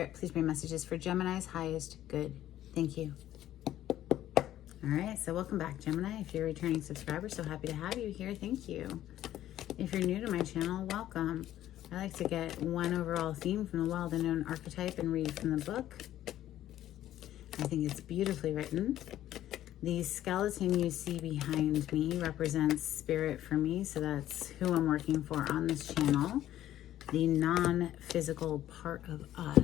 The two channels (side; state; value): right; quieter; 12.8 dB